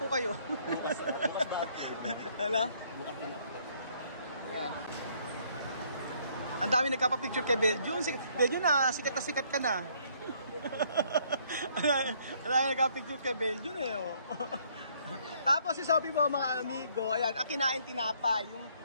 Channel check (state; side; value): inverted; both; correlation -0.65